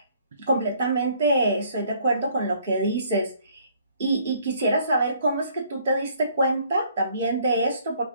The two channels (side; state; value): both; inverted; correlation -0.62